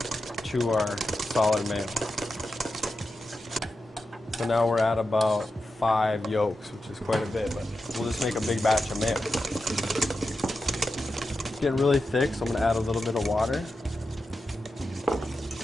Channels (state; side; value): normal; both; correlation 0.90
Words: to our solid mayo. So now we're at about 5 yolks, which is quite a bit, but we'll just make a big batch of mayo. It's getting really thick, so I'm gonna add a little bit of water.